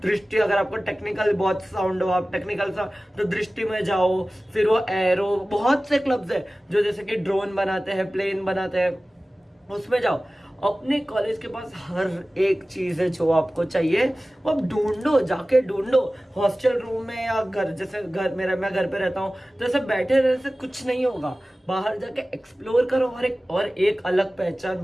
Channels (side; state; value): both; normal; correlation 0.97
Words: दृष्टि, अगर आपको टेक्निकल बहुत साउंड हो, आप टेक्निकल तो दृष्टि में जाओ। फिर वो एरो, बहुत से क्लब्स है जो जैसे कि ड्रोन बनाते हैं, प्लेन बनाते हैं, उसमें जाओ। अपने कॉलेज के पास हर एक चीज है जो आपको चाहिए, वो आप ढूंढो, जाके ढूंढो। हॉस्टल रूम में या घर, जैसे घर मेरा, मैं घर पे रहता हूँ, तो ऐसे बैठे रहने से कुछ नहीं होगा। बाहर जाके एक्सप्लोर करो। और एक अलग